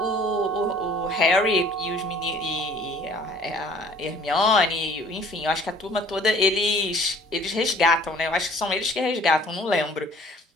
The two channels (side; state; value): both; normal; correlation 0.52